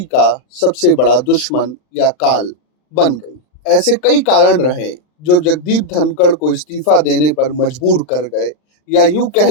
का सबसे बड़ा दुश्मन या काल बन गई। ऐसे कई कारण रहे जो जगदीप धनखड़ को इस्तीफा देने पर मजबूर कर गए, या यूं कह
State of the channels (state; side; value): late; right; 39 ms